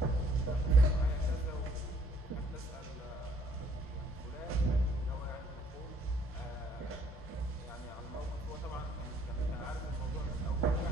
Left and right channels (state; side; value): normal; both; correlation 0.62